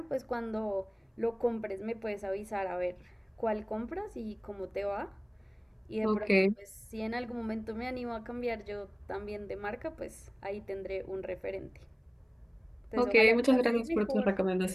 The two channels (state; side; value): identical; both; correlation 1.00